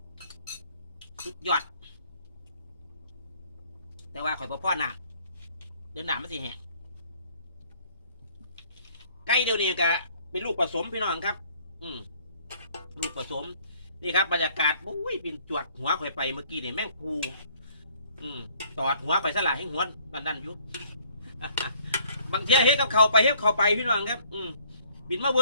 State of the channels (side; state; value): both; inverted; correlation -0.60